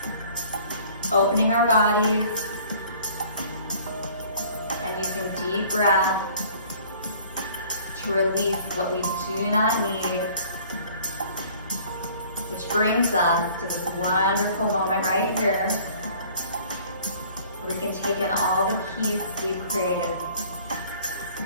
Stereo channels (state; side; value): inverted; both; correlation -0.52